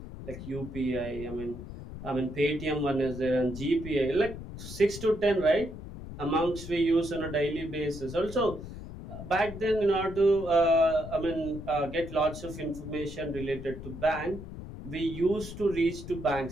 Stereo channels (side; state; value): left; noise; rumble, 11 dB below the sound